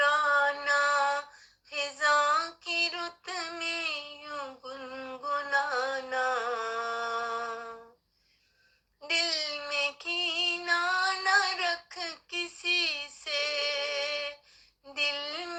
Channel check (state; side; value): identical; both; correlation 1.00